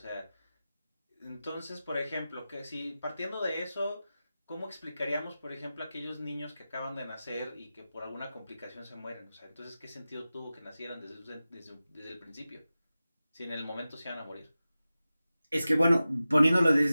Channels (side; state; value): both; inverted; correlation -0.94